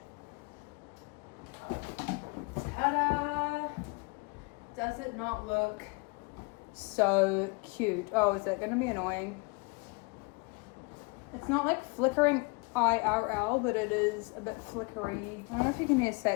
Ta-da! Does it not look so cute? Oh, is that gonna be annoying? It's not like flickering IRL, but it is a bit flickery. I don't know if you can hear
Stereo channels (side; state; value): right; quieter; 30.1 dB